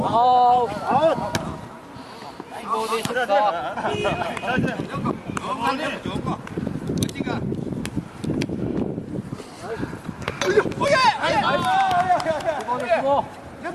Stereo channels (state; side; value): identical; both; correlation 1.00